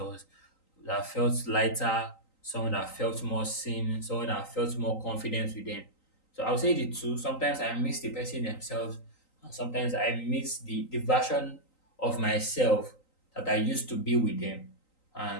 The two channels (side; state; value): right; late; 3.9 ms